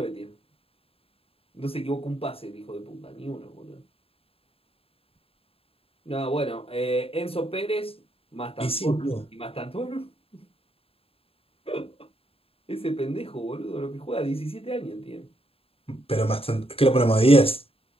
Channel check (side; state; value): right; late; 0.27 ms